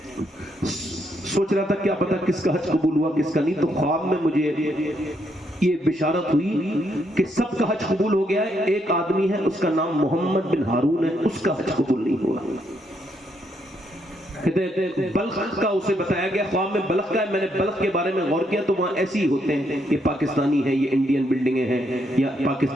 سوچ رہا تھا کیا پتا کس کا حج قبول ہوا کس کا نہیں, تو خواب میں مجھے یہ بشارت ہوئی کہ سب کا حج قبول ہو گیا ہے, ایک آدمی ہے اس کا نام محمد بن ہارون ہے, اس کا حج قبول نہیں ہوا. بلخ کا اسے بتایا گیا, خواب میں بلخ کا ہے. میں نے بلخ کے بارے میں غور کیا تو وہاں ایسے ہی ہوتے ہیں, یہ پاکستانی ہیں, یہ انڈین بلڈنگیں ہیں, یا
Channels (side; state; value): both; normal; correlation 0.75